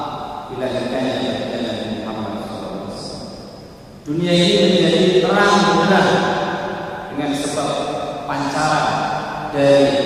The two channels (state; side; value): identical; both; correlation 1.00